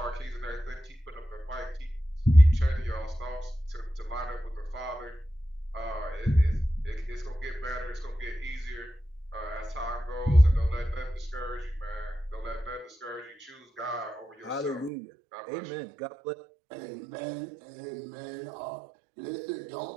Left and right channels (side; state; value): left; drops out; at 14.9 s